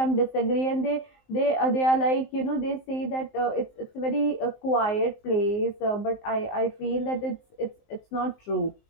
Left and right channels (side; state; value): right; late; 19 ms